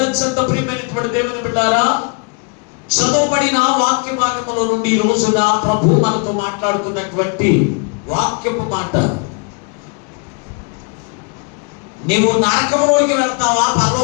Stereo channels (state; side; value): quieter; right; 35.7 dB